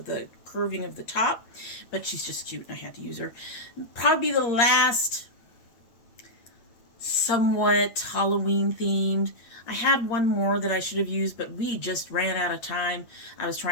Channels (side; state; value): right; late; 8.6 ms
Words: the curving of the top. But she's just cute and I had to use her. Probably the last somewhat Halloween themed. I had one more that I should have used, but we just ran out of time. I was